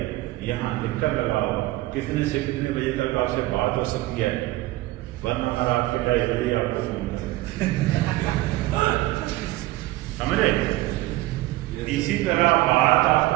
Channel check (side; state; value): left; quieter; 17.9 dB